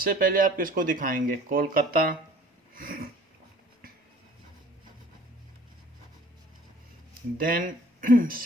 पहले आप किसको दिखाएंगे? कोलकाता, देन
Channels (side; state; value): both; normal; correlation 0.51